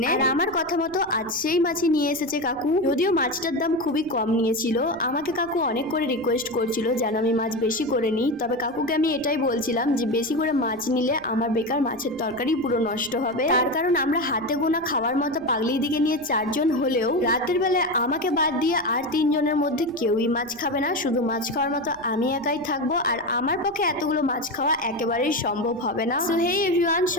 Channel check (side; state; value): right; noise; rumble, 26 dB below the sound